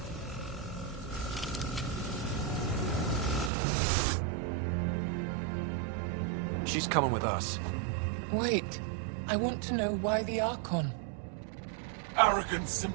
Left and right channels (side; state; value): left; drops out; at 3.5 s